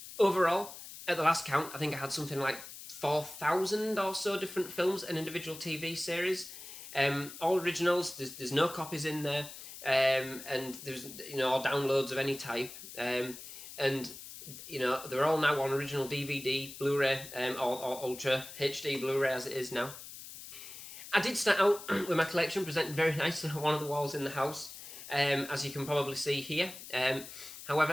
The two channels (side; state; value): left; noise; hiss, 13 dB below the sound